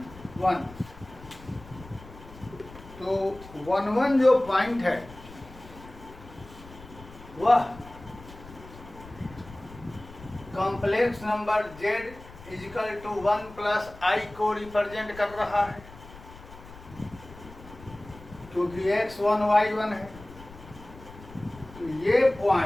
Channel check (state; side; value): noise; left; rumble, 18 dB below the sound